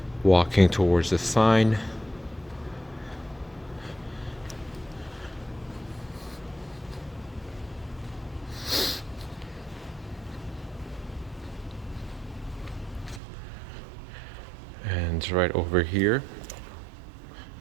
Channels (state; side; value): drops out; left; at 13.2 s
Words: walking towards the sign. And right over here,